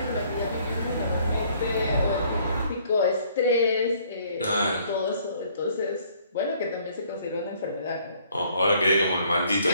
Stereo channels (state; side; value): inverted; both; correlation -0.62